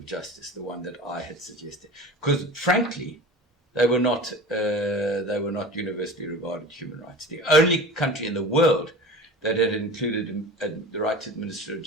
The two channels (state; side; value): normal; both; correlation 0.35